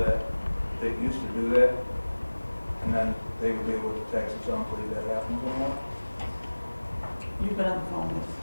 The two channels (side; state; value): both; inverted; correlation -1.00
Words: they used to do that, and then they would be able to tax us on, believe that happens anymore. You've been on the phone with.